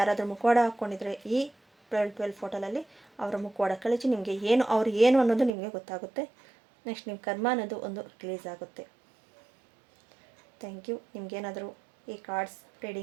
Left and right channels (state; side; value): drops out; left; at 5.5 s